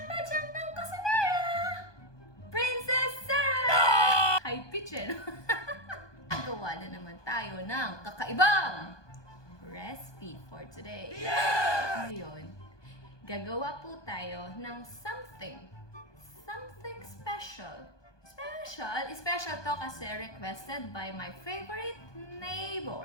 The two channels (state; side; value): late; right; 1.2 ms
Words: ng kusinera! Princess Sarah! High pitch eh, no? Gawa na naman tayo ng kakaibang recipe for today. Ngayon, gagawa po tayo ng something special. Special to kasi requested by my favorite